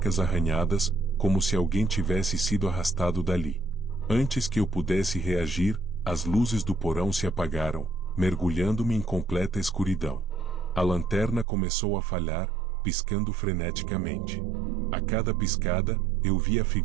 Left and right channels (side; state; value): left; drops out; at 11.5 s